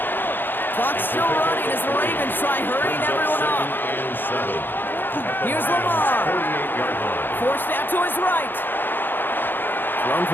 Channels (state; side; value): late; right; 0.096 ms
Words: Clock's still running as the Ravens try hurrying everyone up. Here's Lamar. Forced out to his right. Thrown